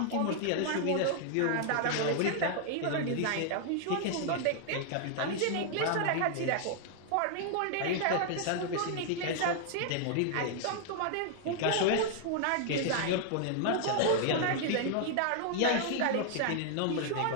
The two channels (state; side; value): different; both; correlation 0.00